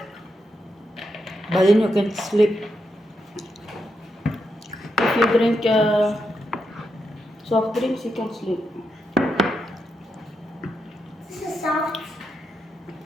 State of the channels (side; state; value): both; normal; correlation 0.84